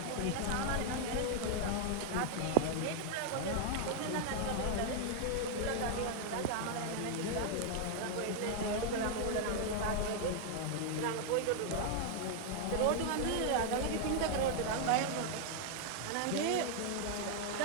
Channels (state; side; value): different; both; correlation 0.00